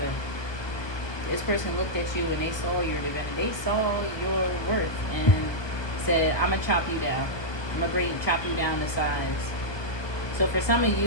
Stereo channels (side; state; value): right; late; 1.2 ms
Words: This person looked at you and they saw your divinity. They saw your worth and said, I'm gonna chop you down. I'm gonna chop you down to size. So for some of